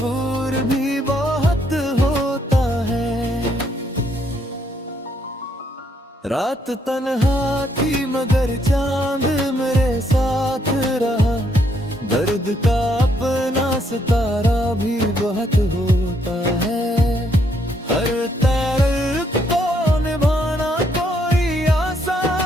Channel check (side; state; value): both; normal; correlation 0.72